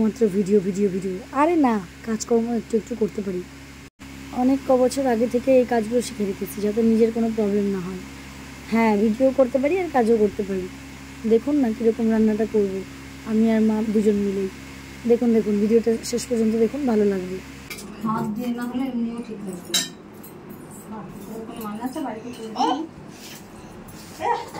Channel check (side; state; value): both; identical; correlation 1.00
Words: ভিডিও ভিডিও ভিডিও। আরে না, কাজকর্ম একটু একটু করতে পারি। অনেক বছর আগে থেকে এই কাজগুলো শিখে রেখেছি যাতে নিজের কোনো প্রবলেম না হয়। হ্যাঁ, ভিডিও করতে পারি আর কাজও করতে পারি। দেখুন না কীরকম রান্নাটা করব, আমি আর মা দুজন মিলেই। দেখুন দেখুন ভিডিওটা শেষ পর্যন্ত দেখুন, ভালো লাগবে। হাত দিয়ে না হলে এমনিও ঠিক লাগবে।